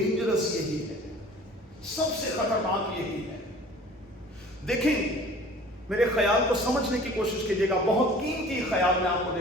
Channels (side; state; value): both; normal; correlation 0.46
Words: یہی ہے، سب سے خطرناک یہی ہے۔ دیکھیں، میرے خیال کو سمجھنے کی کوشش کیجیے گا، بہت قیمتی خیال میں آپ کو